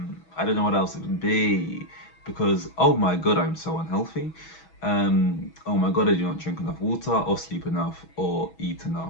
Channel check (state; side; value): late; right; 6.2 ms